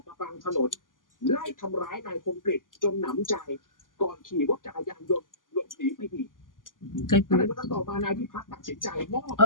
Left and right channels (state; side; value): late; right; 0.89 ms